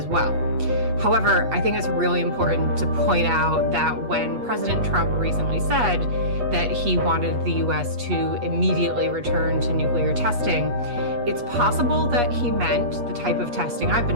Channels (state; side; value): late; left; 8.3 ms